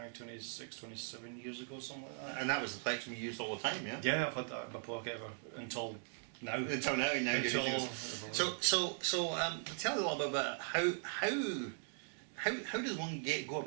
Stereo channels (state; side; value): silent; left; 51 dB below the other